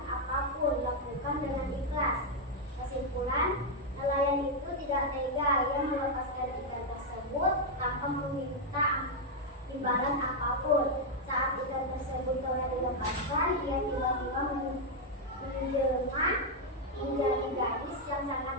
apapun, lakukan dengan ikhlas. Kesimpulan, nelayan itu tidak tega, ia melepaskan ikan tersebut tanpa meminta imbalan apapun. Saat ikan tersebut telah dilepaskan, ia tiba-tiba menjelma menjadi gadis yang sangat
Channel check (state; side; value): normal; both; correlation 0.00